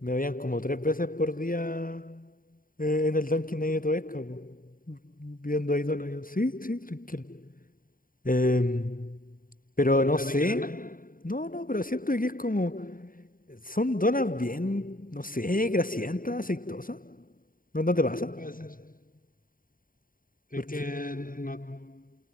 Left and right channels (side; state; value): right; late; 0.41 ms